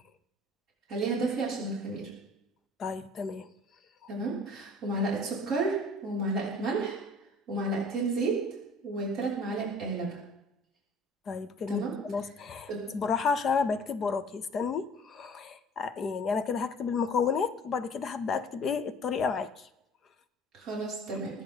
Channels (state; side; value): normal; both; correlation 0.49